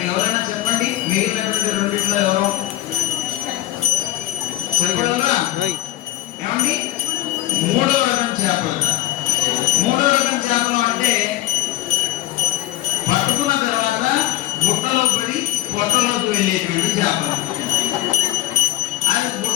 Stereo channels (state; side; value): quieter; right; 16.0 dB